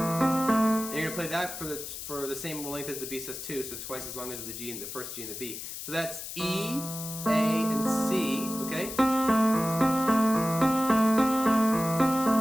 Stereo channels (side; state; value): left; noise; hiss, 9 dB below the sound